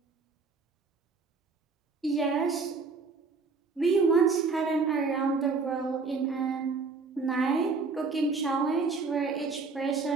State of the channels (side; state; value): left; quieter; 4.4 dB